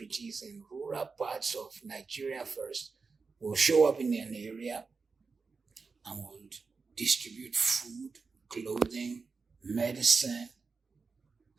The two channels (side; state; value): left; quieter; 4.6 dB